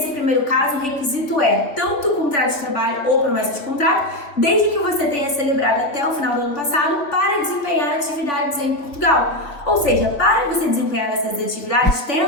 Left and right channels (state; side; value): late; right; 3.3 ms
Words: primeiro caso, o requisito é tanto o contrato de trabalho ou promessa de contrato, desde que você tenha celebrado até o final do ano passado para desempenhar atividades em Portugal. Ou seja, para você desempenhar essas atividades,